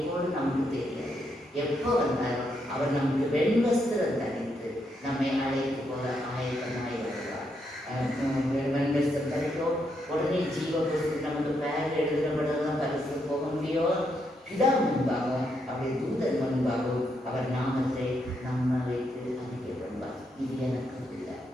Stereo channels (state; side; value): normal; both; correlation 0.79